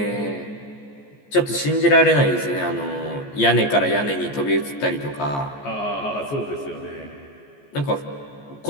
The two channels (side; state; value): right; late; 14 ms